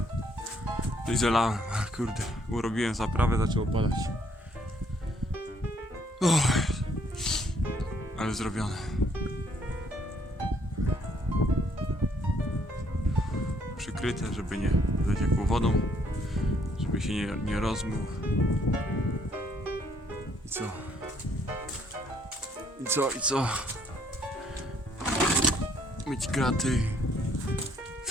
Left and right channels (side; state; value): both; normal; correlation 0.67